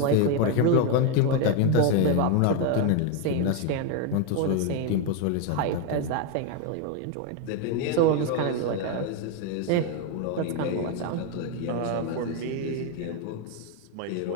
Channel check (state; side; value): different; both; correlation 0.01